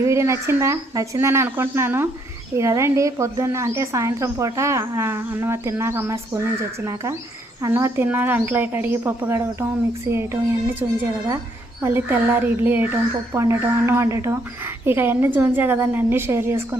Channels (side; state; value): both; normal; correlation 0.71